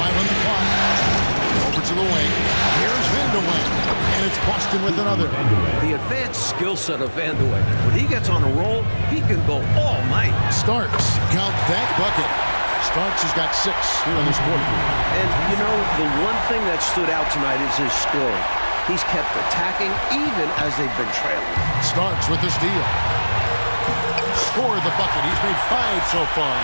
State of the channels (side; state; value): both; inverted; correlation -1.00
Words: on the clock. Over to the wing. Here's Vandeweghe. And it's Boston with another. The advanced skill set of Vandeweghe. When he gets on a roll, he can go all night. Starks. Count that bucket. Starks has got 6 here in this quarter. And, you know, the one thing that stood out tonight is his scoring. He's kept attacking even as they've been trailing. Starks with the steal. Scored the bucket. He's made 5 so far,